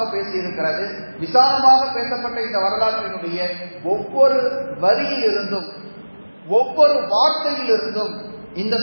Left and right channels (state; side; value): inverted; both; correlation -1.00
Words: பேசியிருக்கிறது. விசாலமாக பேசப்பட்ட இந்த வரலாற்றினுடைய ஒவ்வொரு வரியிலிருந்தும் ஒவ்வொரு வார்த்தையிலிருந்தும் இந்த